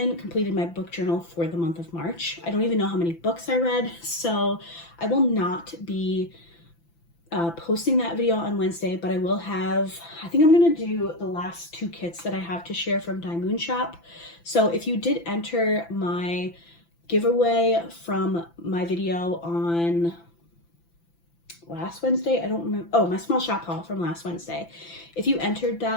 completed my book journal for the month of March. I don't even know how many books I read, so I will not be posting that video on Wednesday, but I will have, I think I'm going to do the last 2 kits that I have to share from Diamond Shop. So if you did enter my giveaway from my video on last Wednesday, I don't remember, oh, my small shop haul from last Wednesday. If you entered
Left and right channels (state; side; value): late; right; 5.9 ms